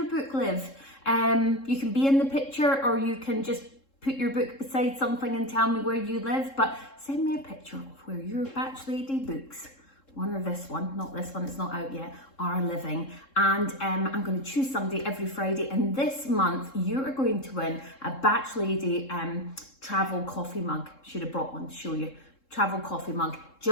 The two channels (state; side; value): late; right; 3.7 ms